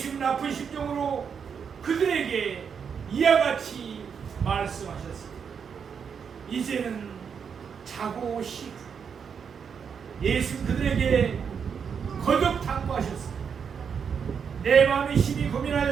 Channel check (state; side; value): quieter; left; 6.8 dB